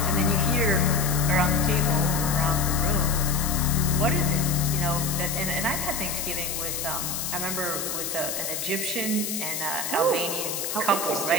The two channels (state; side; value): noise; left; hiss, 3 dB below the sound